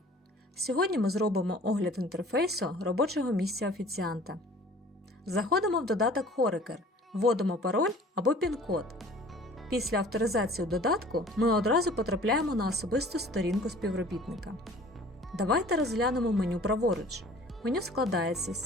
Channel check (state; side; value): normal; both; correlation 0.49